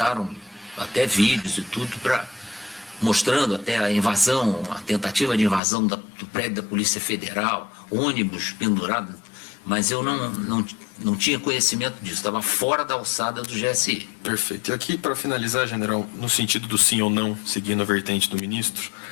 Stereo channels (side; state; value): right; drops out; at 5.6 s